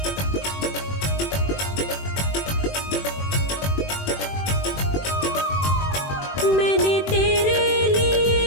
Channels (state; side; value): late; right; 21 ms